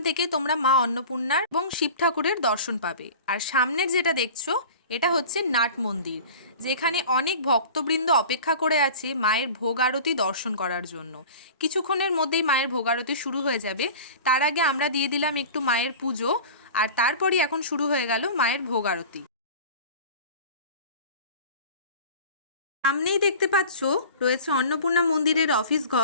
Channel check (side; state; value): both; inverted; correlation -0.38